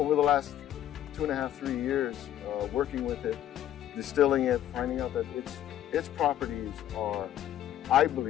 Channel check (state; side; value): quieter; right; 11.6 dB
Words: the last 2.5, 3 years, working with it, distilling it, finding out that its properties are, I